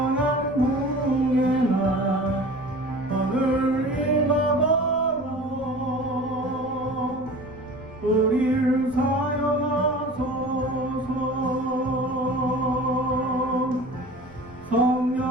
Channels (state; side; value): noise; left; rumble, 21 dB below the sound